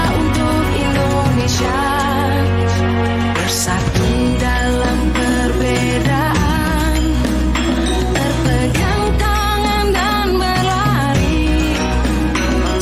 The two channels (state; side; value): identical; both; correlation 1.00